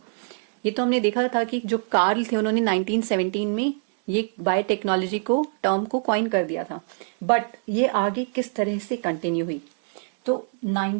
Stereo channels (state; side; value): silent; left; 62 dB below the other